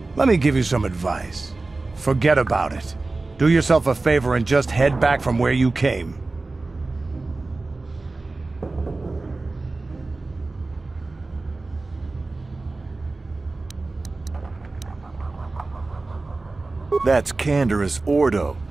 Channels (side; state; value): left; quieter; 3.4 dB